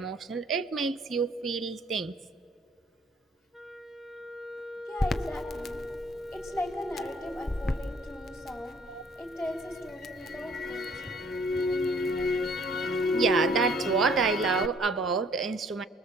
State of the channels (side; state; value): both; normal; correlation 0.60